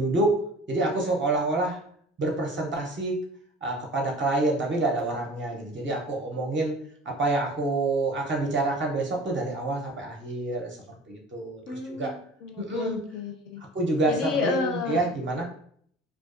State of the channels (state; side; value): normal; both; correlation 0.43